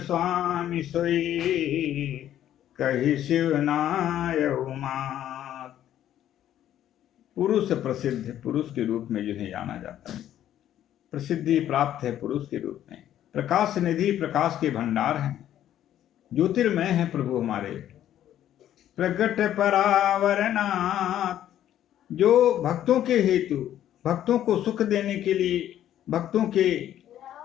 सोई कही शिवनाय उमात। पुरुष प्रसिद्ध, पुरुष के रूप में जिन्हें जाना जाता है, प्रसिद्धि प्राप्त है पुरुष के रूप में। प्रकाश निधि, प्रकाश के भंडार हैं, ज्योतिर्मय है प्रभु हमारे। प्रगट परावरनाथ, जो भक्तों के हेतु, भक्तों को सुख देने के लिए, भक्तों के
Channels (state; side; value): quieter; right; 11.5 dB